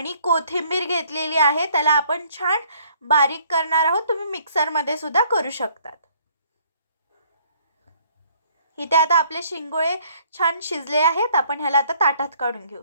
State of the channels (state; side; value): inverted; both; correlation -0.61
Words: कोथिंबीर घेतलेली आहे. त्याला आपण छान बारीक करणार आहोत. तुम्ही मिक्सरमध्ये सुद्धा करू शकतात. इथे आता आपले शिंगोळे छान शिजले आहेत. आपण ह्याला आता ताटात काढून घेऊ.